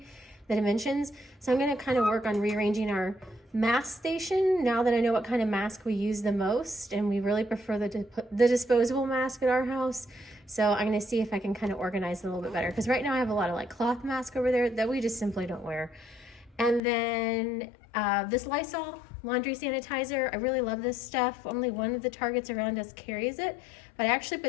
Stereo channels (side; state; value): right; drops out; at 16.8 s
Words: the dimensions. So I'm going to kind of work on rearranging our mask station now that I know what kind of mask we use the most, and we really prefer the disposable mask at our house. So I'm going to see if I can kind of organize it a little bit better, because right now I have a lot of like cloth mask over there that we just simply don't wear. And then this Lysol laundry sanitizer, I really love this stuff. Only one of the Targets around us carries it, but I actually